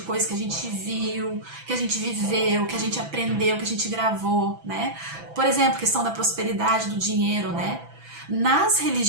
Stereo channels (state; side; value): late; left; 6.0 ms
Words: que a gente viu, que a gente viveu, que a gente aprendeu, que a gente gravou, né? Por exemplo, questão da prosperidade, do dinheiro, né? Nas